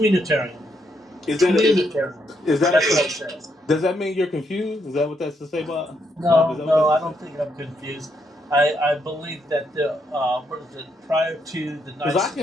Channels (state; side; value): normal; both; correlation 0.77